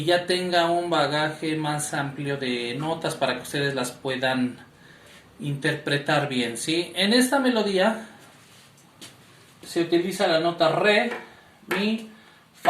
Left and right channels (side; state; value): both; identical; correlation 1.00